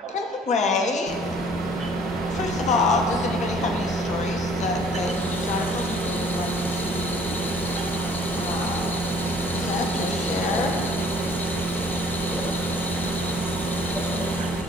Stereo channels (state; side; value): normal; both; correlation 0.55